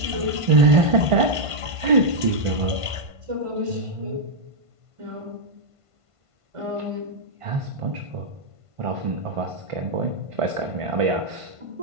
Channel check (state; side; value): late; left; 1.5 ms